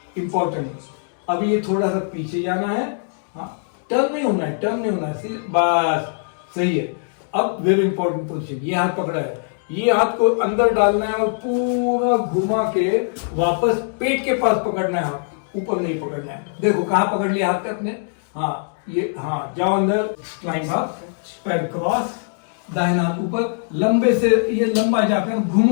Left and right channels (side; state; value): right; silent; digital silence